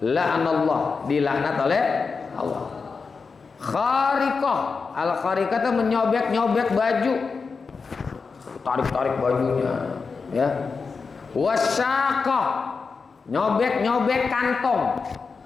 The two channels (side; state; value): right; quieter; 4.9 dB